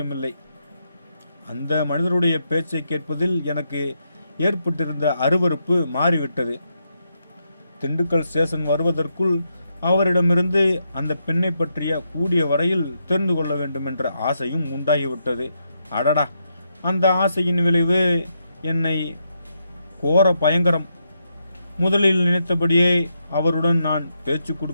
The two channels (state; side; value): inverted; both; correlation -0.81